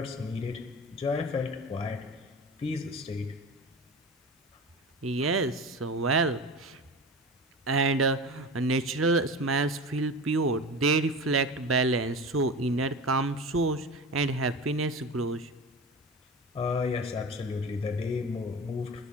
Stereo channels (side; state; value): both; normal; correlation 0.31